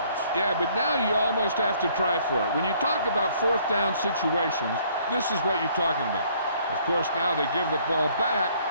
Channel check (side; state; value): both; inverted; correlation -0.61